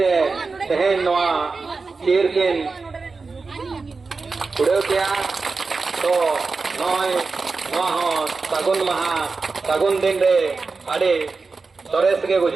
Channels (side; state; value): left; quieter; 4.3 dB